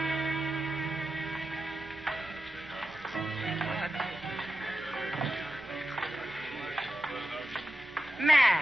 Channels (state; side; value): normal; both; correlation 0.91